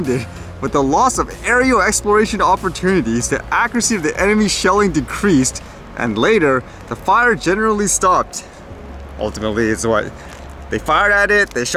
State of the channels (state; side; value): identical; both; correlation 1.00